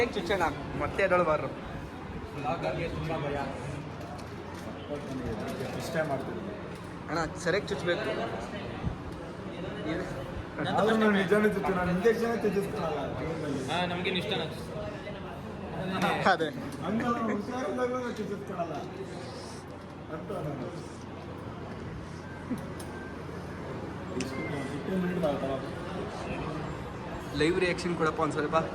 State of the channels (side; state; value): both; identical; correlation 1.00